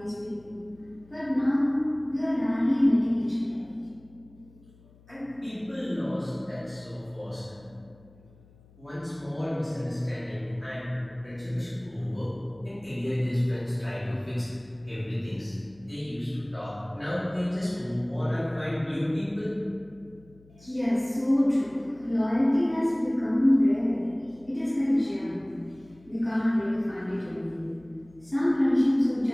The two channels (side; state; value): left; noise; hum, 26 dB below the sound